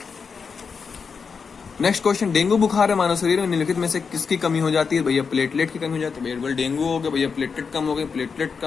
नेक्स्ट क्वेश्चन, डेंगू बुखार है मानव शरीर में निम्नलिखित में से किसकी कमी हो जाती है? भैया प्लेटलेट की कमी हो जाती है। भैया डेंगू हो गया भैया, प्लेटलेट कम हो गई, प्लेटलेट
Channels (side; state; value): right; quieter; 5.6 dB